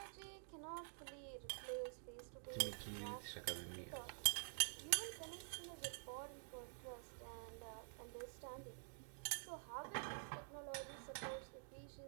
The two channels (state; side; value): silent; left; digital silence